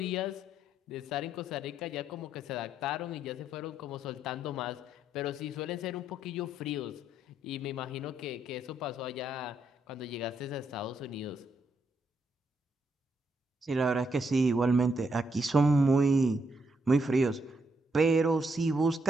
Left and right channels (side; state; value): both; normal; correlation 0.76